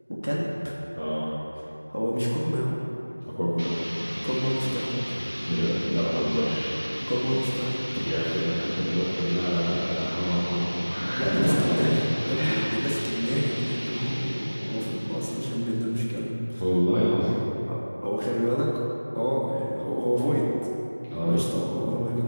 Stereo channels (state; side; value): inverted; both; correlation -1.00